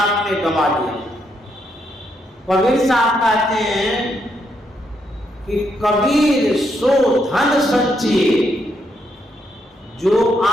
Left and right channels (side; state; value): both; normal; correlation 0.77